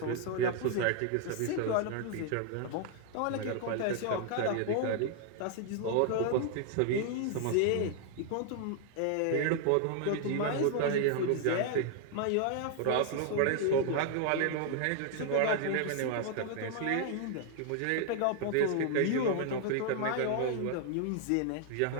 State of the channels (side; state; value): both; different; correlation 0.00